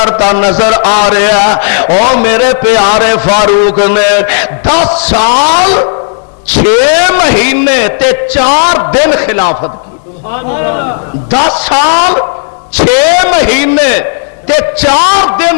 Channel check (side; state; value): right; silent; digital silence